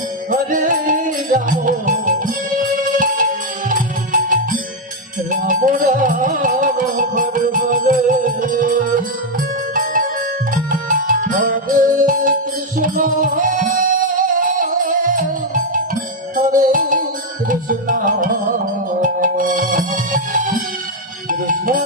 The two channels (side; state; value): both; normal; correlation 0.02